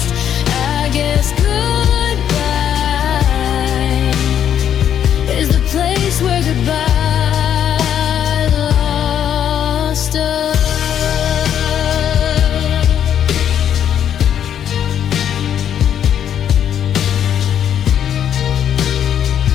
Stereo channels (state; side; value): quieter; right; 9.5 dB